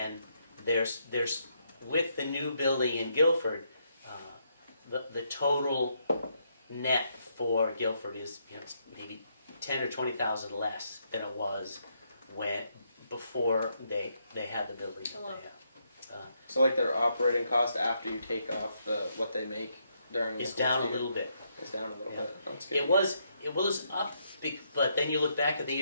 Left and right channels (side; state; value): both; inverted; correlation -0.76